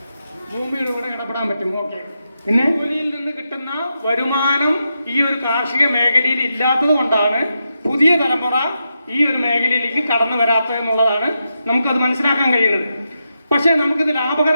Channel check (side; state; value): both; inverted; correlation -0.86